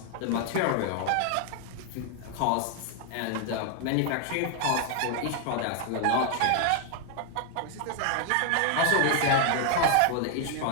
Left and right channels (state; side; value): different; both; correlation 0.00